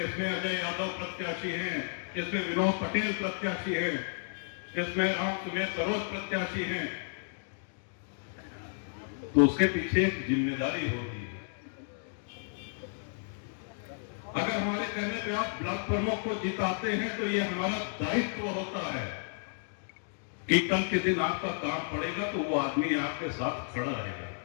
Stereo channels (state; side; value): silent; right; digital silence